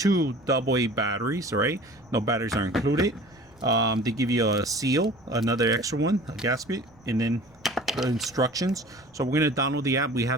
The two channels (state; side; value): noise; right; rumble, 29 dB below the sound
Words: AA batteries, all right? No batteries are included. They give you a seal, another extra one, a gasket, and then the instructions. So we're going to download the app. We